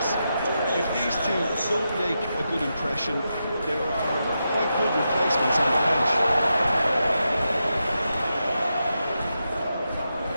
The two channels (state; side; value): inverted; both; correlation -0.87